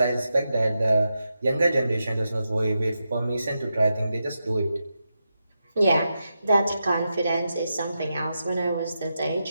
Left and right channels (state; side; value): inverted; both; correlation -0.88